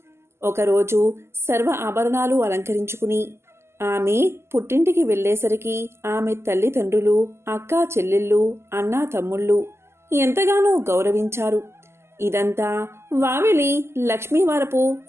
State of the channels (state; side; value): late; left; 0.12 ms